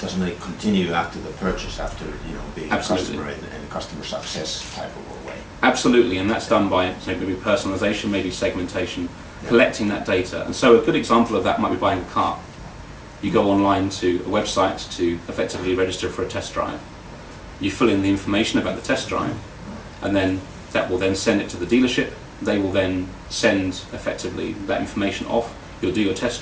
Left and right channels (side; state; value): both; identical; correlation 1.00